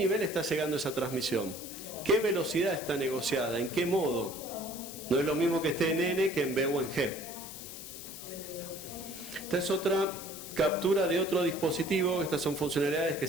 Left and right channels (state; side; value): noise; left; hiss, 11 dB below the sound